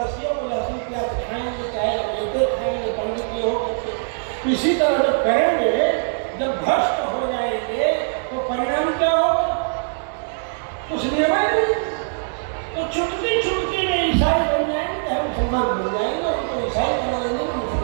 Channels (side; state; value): left; silent; digital silence